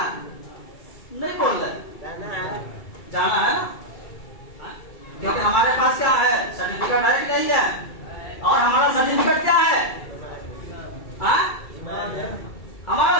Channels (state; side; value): late; right; 2.3 ms